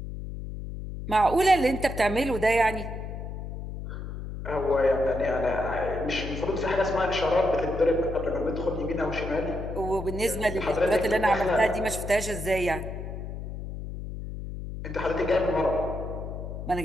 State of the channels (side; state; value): left; noise; hum, 8 dB below the sound